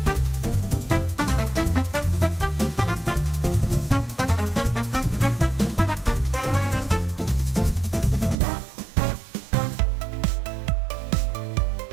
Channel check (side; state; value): left; drops out; at 8.3 s